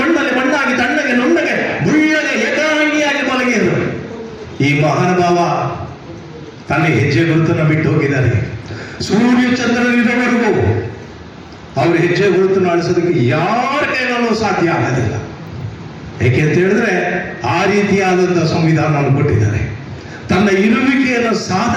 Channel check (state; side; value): identical; both; correlation 1.00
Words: ಮಣ್ಣಲ್ಲಿ ಮಣ್ಣಾಗಿ ತಣ್ಣಗೆ ನುಣ್ಣಗೆ ಮುಳ್ಳಗೆ ಏಕಾಂಗಿಯಾಗಿ ಮಲಗಿದರು. ಈ ಮಹಾನುಭಾವ ತನ್ನ ಹೆಜ್ಜೆ ಗುರುತನ್ನು ಬಿಟ್ಟು ಹೋಗಿದ್ದಾರೆ. ಸೂರ್ಯ ಚಂದ್ರನಿರುವವರೆಗೂ ಅವ್ರ ಹೆಜ್ಜೆ ಗುರುತನ್ನು ಅಳಿಸೋದಕ್ಕೆ ಯಾರ ಕೈಗಳಲ್ಲೂ ಸಾಧ್ಯ ಆಗೋದಿಲ್ಲ. ಏಕೆ ಅಂತ ಹೇಳಿದ್ರೆ ಆ ರೀತಿಯಾದಂಥ ಸಂವಿಧಾನವನ್ನು ಕೊಟ್ಟಿದ್ದಾರೆ. ತನ್ನ ಇರುವಿಕೆಯನ್ನು